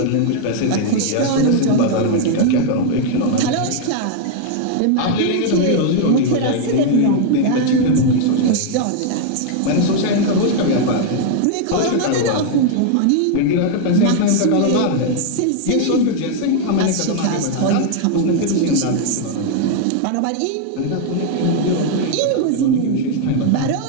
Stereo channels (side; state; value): both; different; correlation 0.00